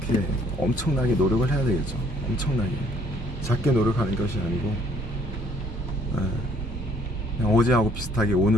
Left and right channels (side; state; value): both; normal; correlation 0.63